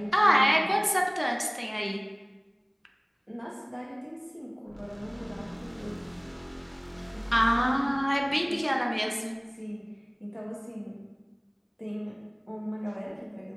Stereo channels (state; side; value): identical; both; correlation 1.00